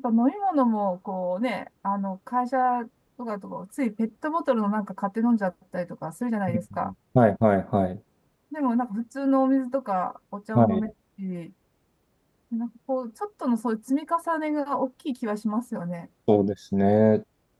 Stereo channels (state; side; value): identical; both; correlation 1.00